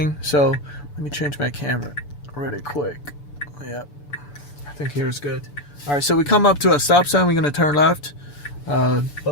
So let me change my camera really quick. Yep. I think here's good. All right, so we come up to a stop sign. We're going to turn left.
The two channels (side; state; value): right; late; 6.8 ms